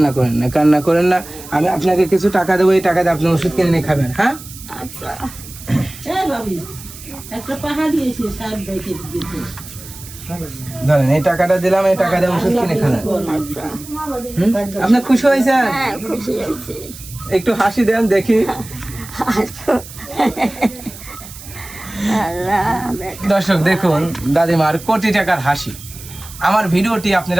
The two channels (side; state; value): right; noise; hiss, 16 dB below the sound